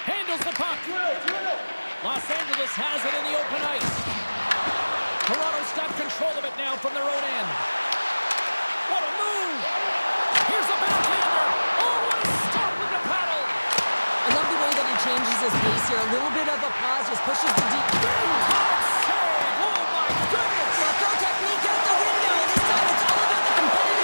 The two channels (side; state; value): both; inverted; correlation -1.00